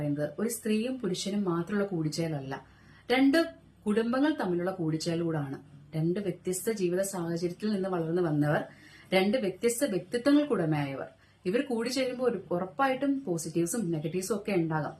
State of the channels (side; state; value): both; identical; correlation 1.00